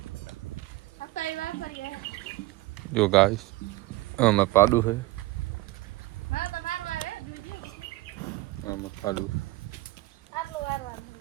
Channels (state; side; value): quieter; left; 19.3 dB